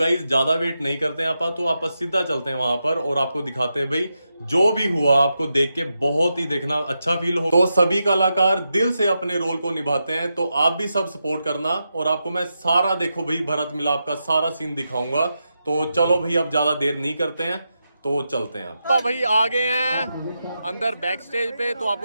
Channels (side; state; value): both; inverted; correlation -0.87